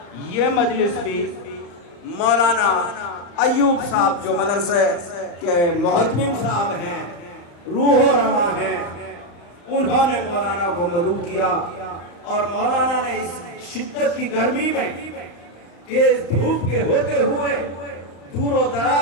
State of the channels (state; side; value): late; right; 35 ms